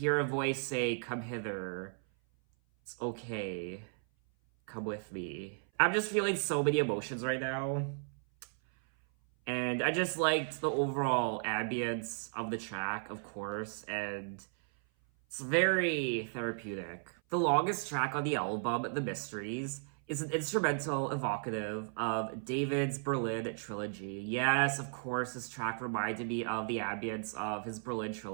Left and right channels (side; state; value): left; silent; 54 dB below the other